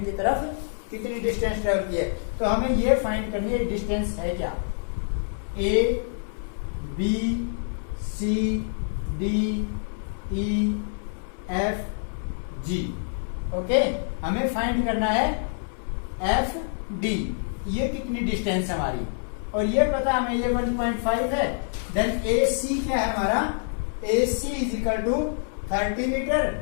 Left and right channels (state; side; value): silent; right; 61 dB below the other